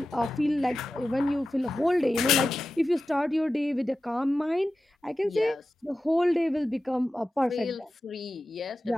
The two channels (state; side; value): normal; both; correlation 0.93